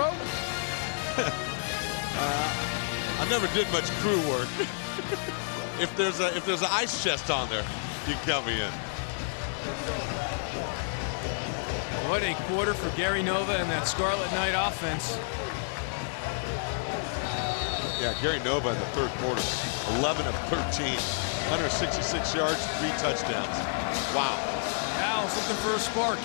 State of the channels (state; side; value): silent; right; digital silence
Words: I never did much crew work. If there's an ice chest on there, you can count me in. What a quarter for Gary Nova and that Scarlet Knight offense. Yeah, Gary Nova in the third quarter, 11 of 13, 166 yards, 3 touchdowns. Wow. Owls looking for a spark.